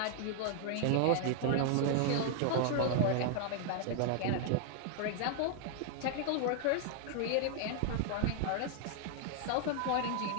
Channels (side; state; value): both; different; correlation 0.00